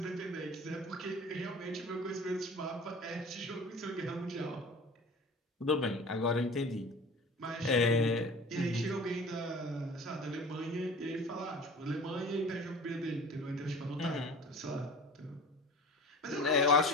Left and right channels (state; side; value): normal; both; correlation 0.40